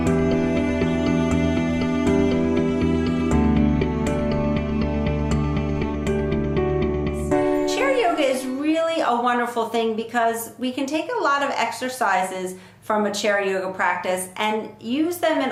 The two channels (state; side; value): identical; both; correlation 1.00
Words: Chair yoga is really a wonderful thing because we can take a lot of exercises from a chair yoga practice and use them in